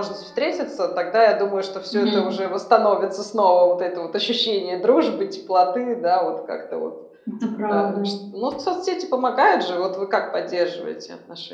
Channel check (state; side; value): identical; both; correlation 1.00